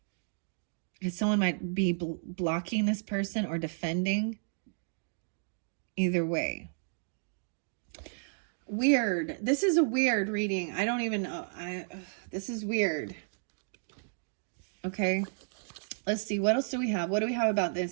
Because someone might be blocking this person or defending. Either way. Weird. This is a weird reading. I don't even know. This is weird. Okay. Let's see. What else do we have? What do we have about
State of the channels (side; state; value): left; silent; digital silence